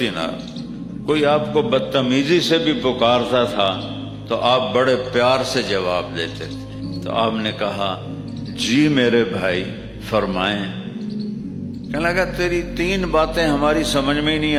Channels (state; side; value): identical; both; correlation 1.00